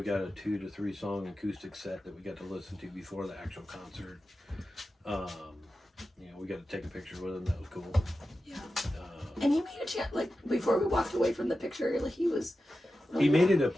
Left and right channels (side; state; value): both; normal; correlation 0.92